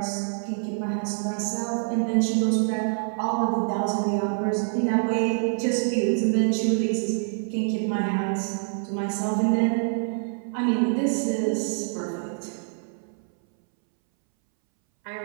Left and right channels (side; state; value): left; silent; 61 dB below the other